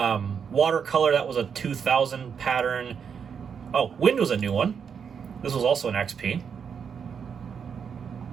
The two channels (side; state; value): left; quieter; 6.9 dB